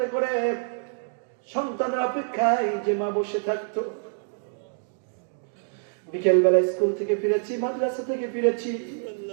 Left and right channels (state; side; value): silent; left; digital silence